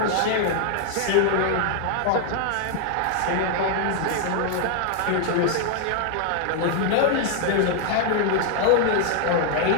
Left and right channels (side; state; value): both; different; correlation 0.00